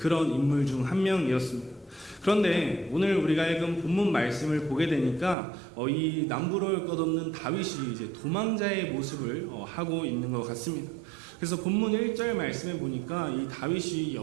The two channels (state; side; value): drops out; left; at 5.4 s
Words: 인물 중 한 명이었습니다. 그런데 오늘 우리가 읽은 본문 말씀을 보게 되니까 이 남부러울 것 없는 다윗이 이제 도망자의 모습을 하고 있는 것 같습니다. 그래서 본문 1절 말씀에 보니까 이 다윗이